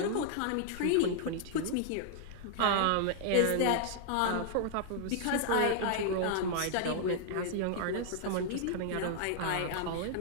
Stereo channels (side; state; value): both; different; correlation -0.01